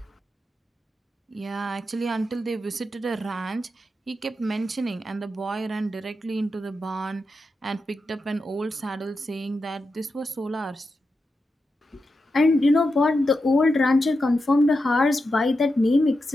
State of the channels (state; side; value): normal; both; correlation 0.88